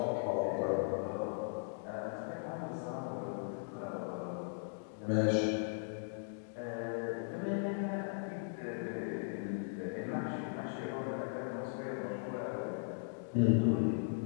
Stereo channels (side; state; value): right; silent; digital silence